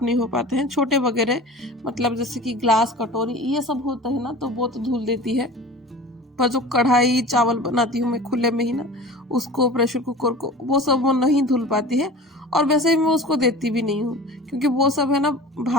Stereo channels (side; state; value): both; normal; correlation 0.38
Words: नहीं हो पाते हैं, छोटे वगैरह, मतलब जैसे कि ग्लास कटोरी ये सब होता है ना तो वो तो धुल देती है, पर जो कढ़ाई चावल बनाती हूँ मैं खुले में ही ना, उसको प्रेशर कुकर को, वो सब वो नहीं धुल पाती है। और वैसे ही मैं उसको देती भी नहीं हूँ, क्योंकि वो सब है ना